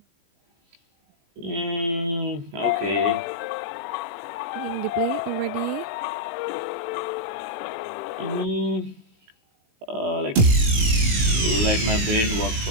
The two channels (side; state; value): left; late; 18 ms